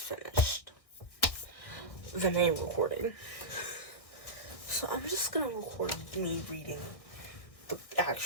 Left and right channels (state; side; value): late; right; 1.6 ms